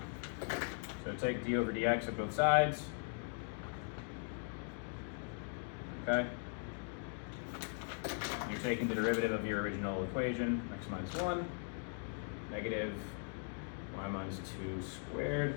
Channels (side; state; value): right; silent; 51 dB below the other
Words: So take d over dx at both sides. Okay? You're taking the derivative of your original equation, x minus 1, negative y minus 2 squared.